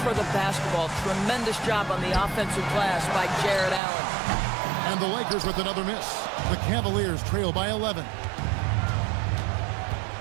for the basketball. Tremendous job on the offensive glass by Jared Allen. And the Lakers with another miss. The Cavaliers trail by 11.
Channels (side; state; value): left; drops out; at 3.8 s